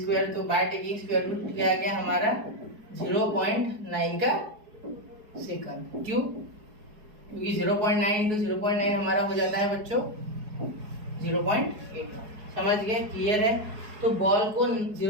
तो बाय टेकिंग स्क्वायर रूट क्या आ गया हमारा 0.9 का सेकंड। क्यों, क्योंकि 0.9 इंटू 0.9 हमारा हो जाता है बच्चों 0.8। समझ गए, क्लियर है। तो बॉल को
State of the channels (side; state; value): left; late; 4.7 ms